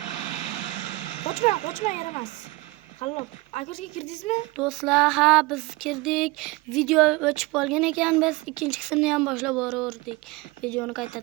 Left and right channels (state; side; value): quieter; left; 22.1 dB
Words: Qochma yaramas. Qallab, agarga kirdingizmi? Do'stlar, ha biz kirdik. Video o'chib qolgan ekan, biz ikkinchi qismni ham boshlab boraverdik. Videoni